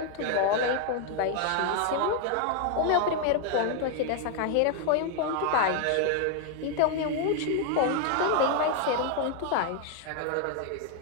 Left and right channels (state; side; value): different; both; correlation 0.00